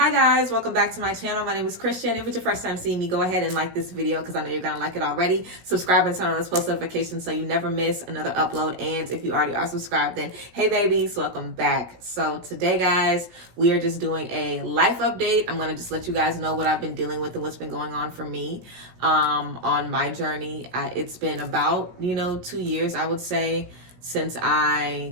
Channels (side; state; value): left; late; 17 ms